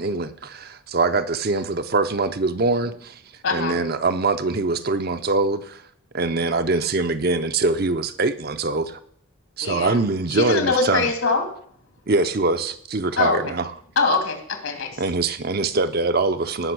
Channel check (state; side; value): normal; both; correlation -0.04